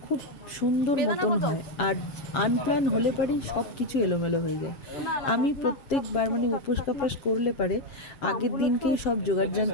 খুব সুন্দর মতন হয়, আর আনপ্ল্যান হলে পারেই সব কিছু এলোমেলো হয়ে যায়। আমি প্রত্যেকবার উপোস কাপাস করলে পারে আগের দিনকেই সব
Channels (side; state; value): right; late; 7.3 ms